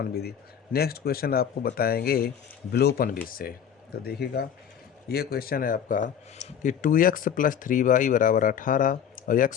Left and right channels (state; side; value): quieter; right; 8.5 dB